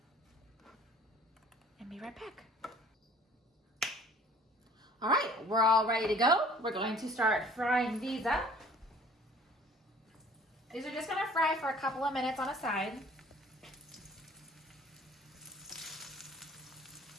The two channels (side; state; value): both; normal; correlation 0.52